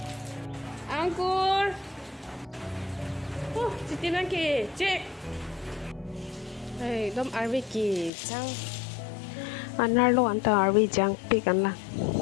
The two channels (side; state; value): right; drops out; at 8.1 s